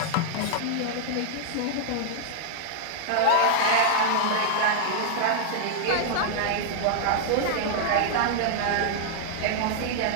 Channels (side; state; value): both; different; correlation -0.01